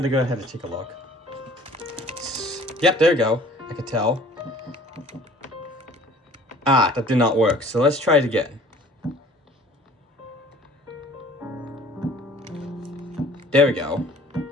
go ahead and take a look. Yep, there we go. I could tell. That did not work. So let's try it again. There we go.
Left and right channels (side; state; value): both; normal; correlation 0.51